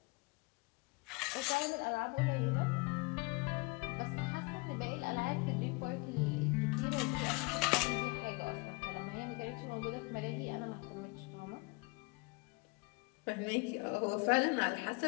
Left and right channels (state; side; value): quieter; right; 27.7 dB